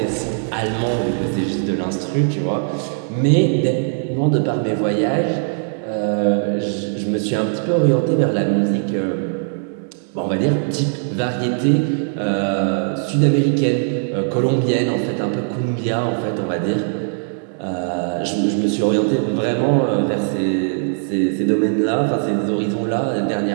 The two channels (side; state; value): left; silent; 65 dB below the other